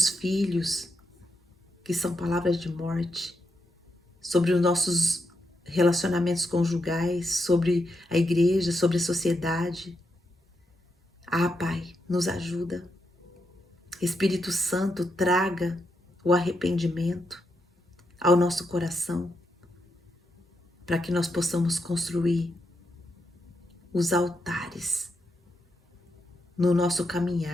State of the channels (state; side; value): normal; both; correlation 0.83